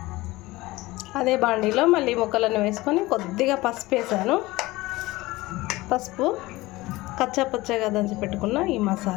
అదే బాండీలో మళ్ళీ ముక్కలను వేసుకొని కొద్దిగా పసుపు వేసాను. పసుపు, కచ్చాపచ్చగా దంచి పెట్టుకున్న ఈ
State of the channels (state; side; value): quieter; right; 19.7 dB